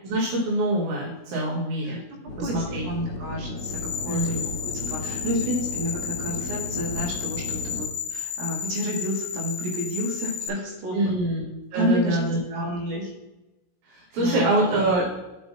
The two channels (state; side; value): late; left; 17 ms